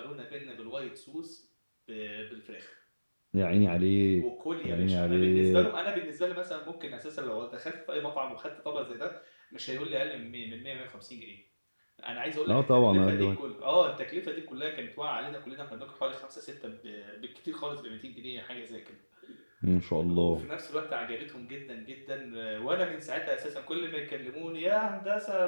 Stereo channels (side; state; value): both; inverted; correlation -1.00